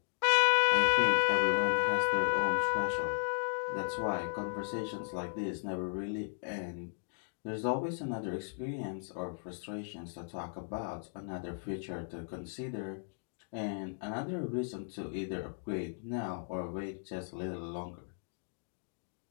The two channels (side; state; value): right; silent; digital silence